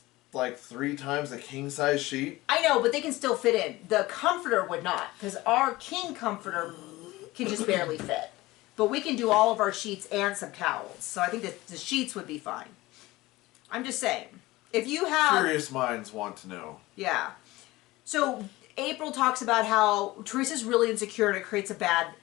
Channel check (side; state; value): right; quieter; 19.3 dB